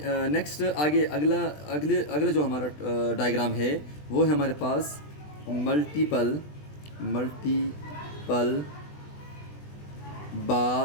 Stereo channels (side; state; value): right; late; 20 ms